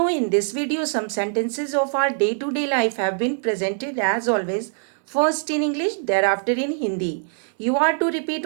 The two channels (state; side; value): silent; left; digital silence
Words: in this video some sentences of our day-to-day life have been presented as always, first in English, thereafter in Hindi. You are to